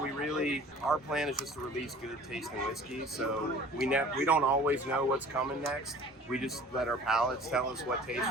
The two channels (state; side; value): normal; both; correlation 0.47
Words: our plan is just to release good tasting whiskey. So we don't always know what's coming next. We just let our palates tell us what tastes